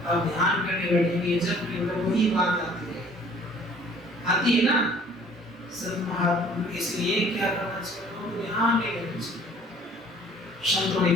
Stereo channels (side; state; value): both; normal; correlation 0.54